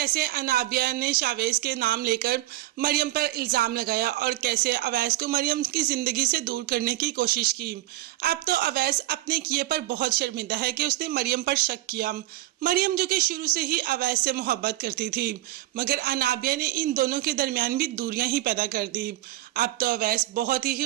अनाबिया ने शावेज के नाम लेकर मरियम पर इल्ज़ाम लगाया और कैसे अवैस को मरियम की ज़िंदगी से दूर करने की कोशिश की। अब तो अवैस अपने किए पर बहुत शर्मिंदा है कि उसने मरियम पर शक किया। मरियम जो कि शुरू से ही अवैस से मोहब्बत करती थी, मगर अनाबिया ने इन दोनों के दरमियान भी दूरियां ही पैदा कर दी। अब तो अवैस बहुत ही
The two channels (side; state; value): left; quieter; 16.4 dB